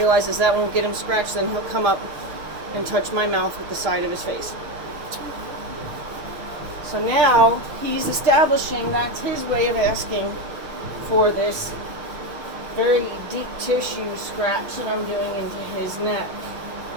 that won't get him scratched. Then he'll come up and touch my mouth with the side of his face. So now he's establishing that's his way of asking for this very deep tissue scratch that I'm doing into his neck.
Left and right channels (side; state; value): left; late; 6.7 ms